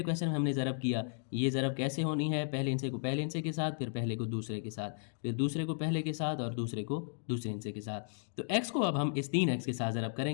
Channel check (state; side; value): silent; right; digital silence